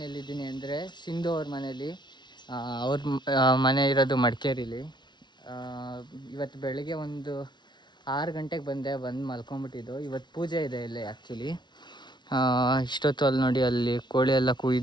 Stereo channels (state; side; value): late; right; 0.21 ms